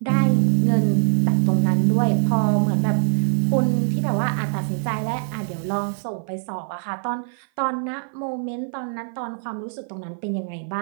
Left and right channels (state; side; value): silent; left; 55 dB below the other